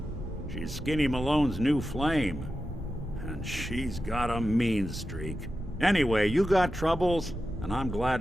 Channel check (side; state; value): both; normal; correlation 0.91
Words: She's Skinny Malone's new flame. And she's got a mean streak. Anyway, you got troubles, and I'm